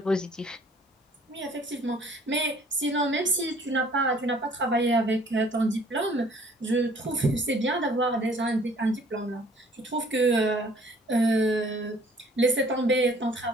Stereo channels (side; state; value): both; normal; correlation 0.56